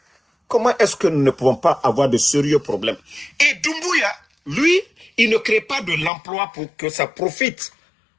comment est-ce que nous ne pouvons pas avoir de sérieux problèmes? Et Doumbouya, lui, il ne crée pas de l'emploi pour que ça profite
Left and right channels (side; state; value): right; drops out; at 6.1 s